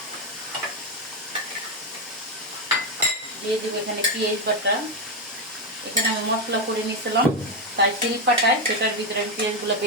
দিয়ে দেবো এখানে পেঁয়াজ বাটা। এখানে আমি মশলা করে নিয়েছিলাম, তাই শিল পাটায় সেটার ভিতরে আমি পেঁয়াজগুলো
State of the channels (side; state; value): both; normal; correlation 0.07